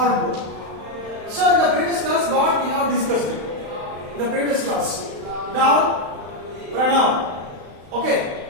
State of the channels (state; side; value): late; left; 35 ms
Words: So in the previous class, what we have discussed in the previous class. Now pronoun. Okay.